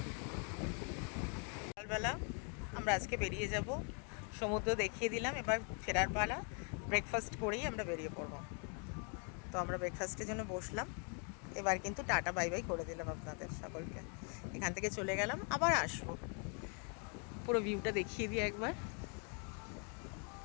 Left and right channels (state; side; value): quieter; right; 39.6 dB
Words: সকালবেলা আমরা আজকে বেরিয়ে যাব, সমুদ্র দেখিয়ে দিলাম, এবার ফেরার পালা। ব্রেকফাস্ট করেই আমরা বেরিয়ে পড়বো। তো আমরা ব্রেকফাস্টের জন্য বসলাম, এবার কিন্তু টাটা বাই বাই করে দিলাম আপনাদের সকলকে। এখান থেকে চলে গেলাম, আবার আসবো। পুরো ভিউটা দেখিয়ে দিই একবার।